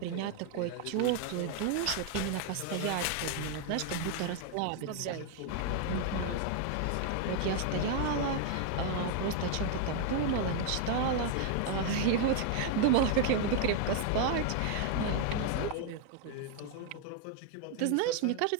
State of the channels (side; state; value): both; different; correlation 0.00